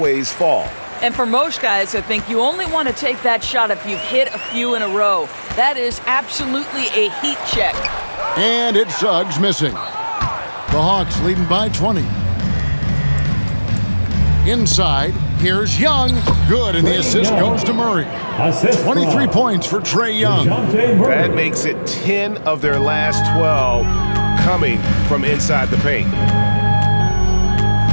fall. And for most guys, I think you only want to take that shot if you've hit a few in a row. That is absolutely a heat check. And it's Suggs missing. The Hawks leading by 20. Inside, here's Young. Good, and the assist goes to Murray. 23 points for Trae Young. That makes it 10 of their last 12 coming from inside the paint.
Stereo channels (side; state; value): both; inverted; correlation -1.00